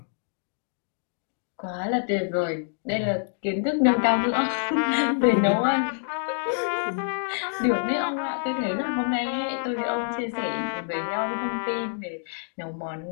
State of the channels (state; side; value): silent; right; digital silence